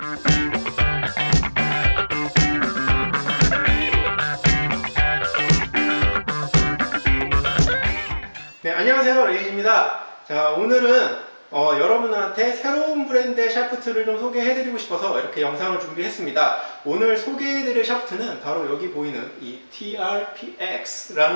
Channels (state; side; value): inverted; both; correlation -1.00